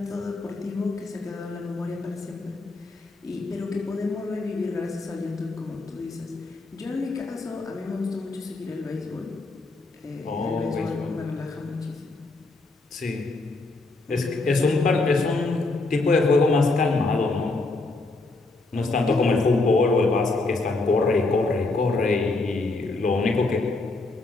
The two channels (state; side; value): quieter; right; 3.3 dB